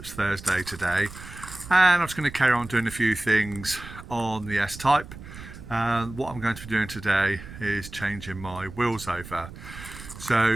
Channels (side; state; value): right; noise; rumble, 14 dB below the sound